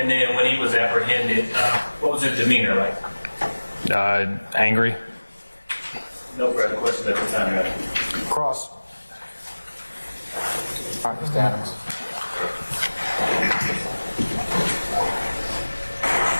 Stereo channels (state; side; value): inverted; both; correlation -1.00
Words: then when he was apprehended, what was his demeanor like? Angry. No further questions at the time, Your Honor. Cross. All right, Mr. Adams.